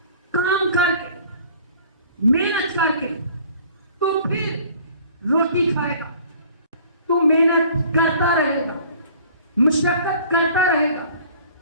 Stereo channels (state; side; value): inverted; both; correlation -0.50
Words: کام کر کے، محنت کر کے، تو پھر روٹی کھائے گا۔ تو محنت کرتا رہے گا، مشقت کرتا رہے گا،